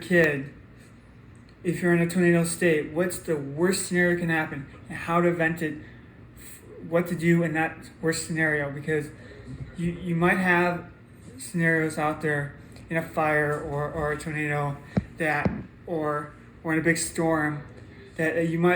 if you're in a tornado state, what's the worst scenario that can happen and how to vent it, what to do in that worst scenario, because you might have scenarios out there in a fire or a tornado or in a big storm that you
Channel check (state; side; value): identical; both; correlation 1.00